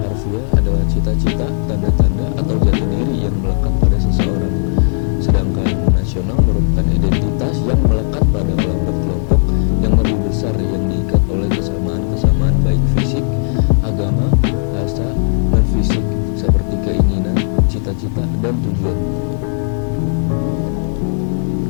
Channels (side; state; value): right; silent; digital silence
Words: harfiah adalah cita-cita, tanda-tanda, atau jati diri yang melekat pada seseorang. Sedangkan nasional merupakan identitas yang melekat pada kelompok-kelompok yang lebih besar yang diikat oleh kesamaan-kesamaan baik fisik, agama, rasa, dan fisik seperti keinginan, cita-cita, dan tujuan.